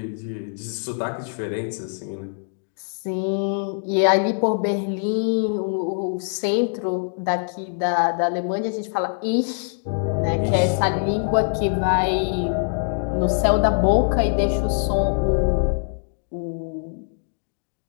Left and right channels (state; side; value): silent; right; digital silence